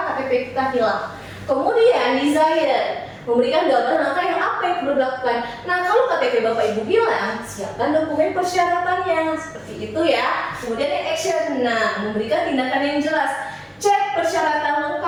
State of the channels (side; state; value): both; identical; correlation 1.00